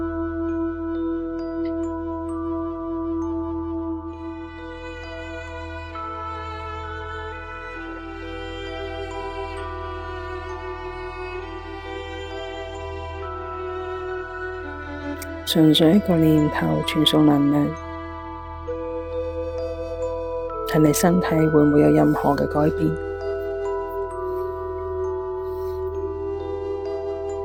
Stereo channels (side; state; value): both; identical; correlation 1.00